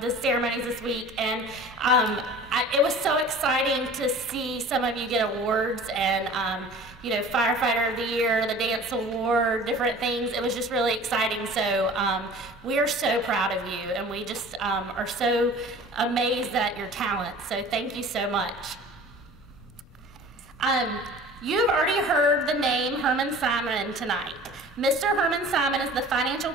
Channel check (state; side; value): normal; both; correlation 0.43